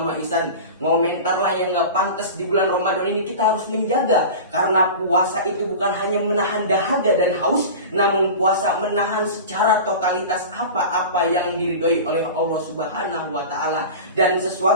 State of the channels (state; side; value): inverted; both; correlation -0.32